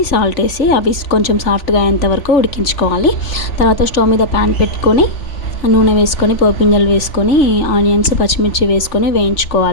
సాల్ట్ వేసి అవి కొంచెం సాఫ్ట్గా అయ్యేంత వరకు ఉడికించుకోవాలి. తర్వాత స్టవ్ మీద ప్యాన్ పెట్టుకొని నూనె వేసుకొని పోపింజలు వేసుకొని ఆనియన్స్ పచ్చిమిర్చి వేసుకొని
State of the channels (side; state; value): right; late; 3.4 ms